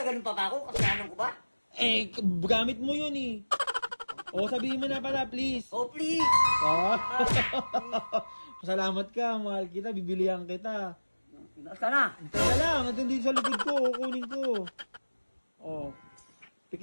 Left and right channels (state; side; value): inverted; both; correlation -1.00